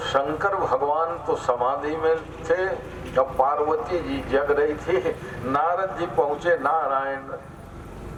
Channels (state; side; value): identical; both; correlation 1.00